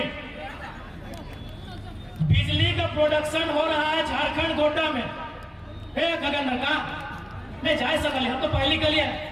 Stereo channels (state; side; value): identical; both; correlation 1.00